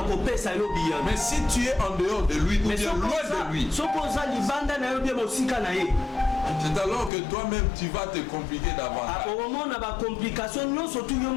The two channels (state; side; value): drops out; right; at 7.1 s